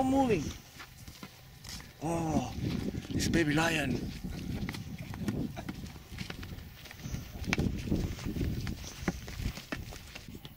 moving. Oh, this baby lion.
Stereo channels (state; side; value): identical; both; correlation 1.00